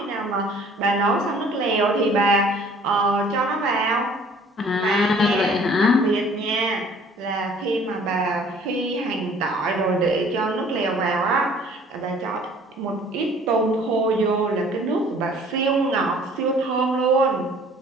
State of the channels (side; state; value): both; normal; correlation 0.53